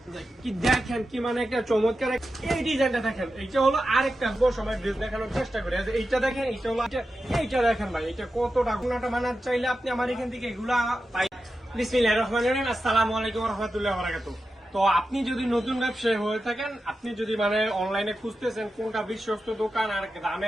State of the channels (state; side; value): normal; both; correlation 0.91